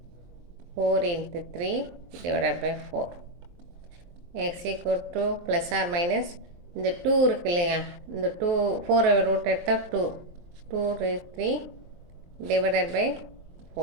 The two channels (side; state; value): left; late; 23 ms